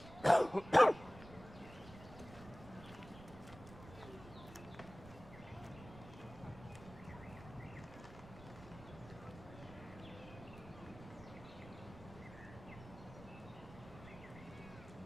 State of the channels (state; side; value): noise; right; rumble, 16 dB below the sound